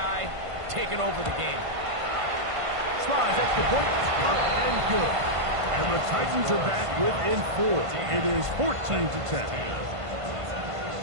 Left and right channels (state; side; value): late; left; 1.5 ms